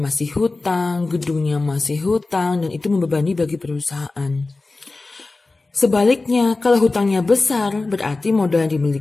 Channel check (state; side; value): quieter; right; 3.4 dB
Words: masih hutang, gedungnya masih hutang, dan itu membebani bagi perusahaan. Sebaliknya, kalau hutangnya besar, berarti modal yang